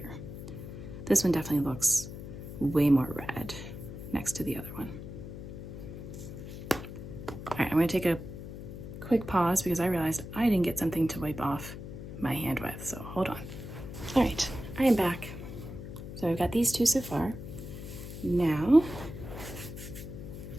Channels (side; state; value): left; noise; hum, 10 dB below the sound